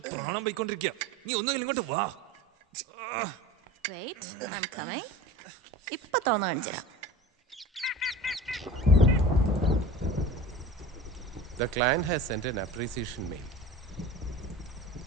പ്രാണം പോയിക്കൊണ്ടിരിക്കുക. നീ ഒന്നുകിൽ ഇങ്ങോട്ട് വാ. ഇപ്പൊ തോന്നു കാണിച്ചുതരാം. The client has sent an appreciation mail.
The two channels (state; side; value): normal; both; correlation 0.35